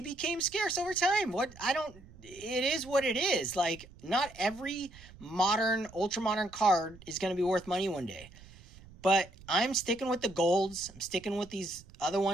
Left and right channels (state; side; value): noise; right; rumble, 21 dB below the sound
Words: became scarce over time. It is what it is. Like, not every modern, ultra modern card is going to be worth money one day. But I'm sticking with the golds. I'm sticking with these other